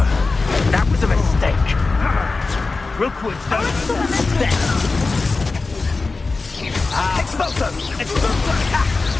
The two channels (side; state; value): right; quieter; 3.8 dB